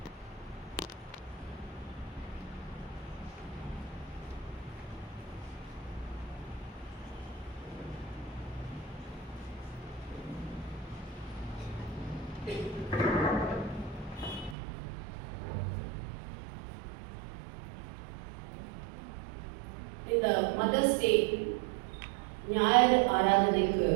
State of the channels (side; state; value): left; drops out; at 14.6 s